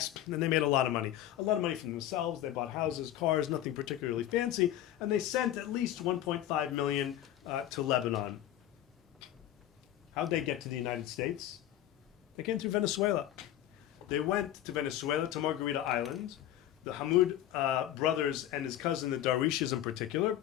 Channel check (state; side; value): quieter; right; 12.4 dB